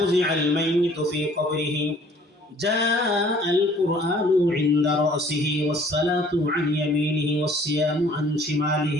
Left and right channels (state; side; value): normal; both; correlation 0.56